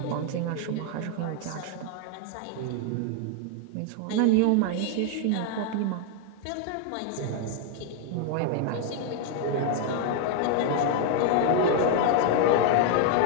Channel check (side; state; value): both; different; correlation 0.00